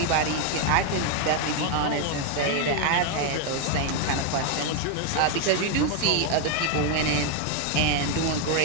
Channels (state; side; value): different; both; correlation 0.01